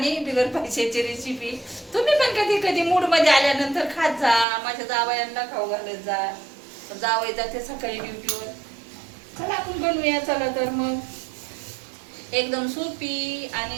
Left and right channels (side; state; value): left; drops out; at 4.5 s